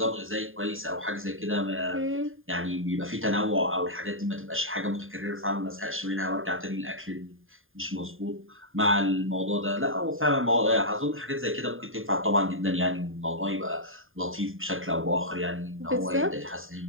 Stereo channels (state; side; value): late; left; 0.59 ms